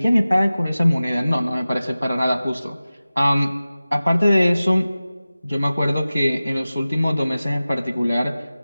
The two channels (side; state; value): both; inverted; correlation -0.96